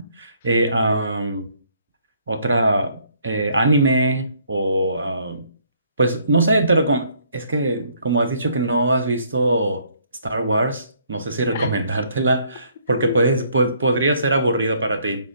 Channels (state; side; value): inverted; both; correlation -0.65